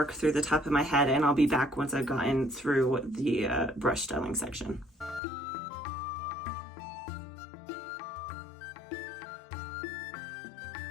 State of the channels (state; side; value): drops out; right; at 5.2 s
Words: through the top of my head, and I'll be back once I've gotten through the brush styling section.